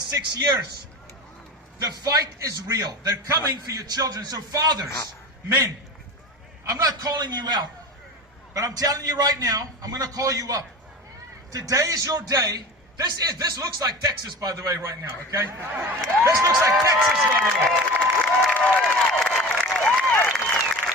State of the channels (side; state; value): both; normal; correlation 0.33